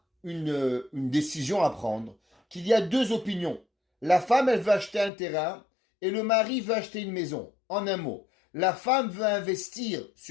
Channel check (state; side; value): drops out; right; at 5.1 s